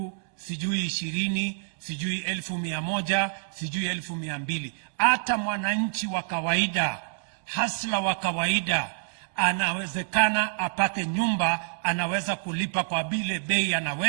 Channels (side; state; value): left; silent; digital silence